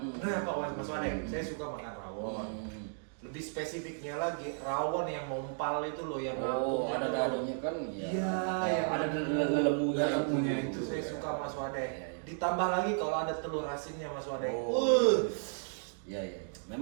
Pak Mas Wadeng, saya suka makan rawon. Lebih spesifiknya lagi, rawon yang mompal itu loh yang Oh, ngapung ada itu. dalamnya kan ya. Iya, yang ada lemunya. lemunya itu saya suka Mas Wadeng. Iya, iya. Ditambah lagi kalau ada telur asinnya Mas Wadeng. Iya iya.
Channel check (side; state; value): left; silent; digital silence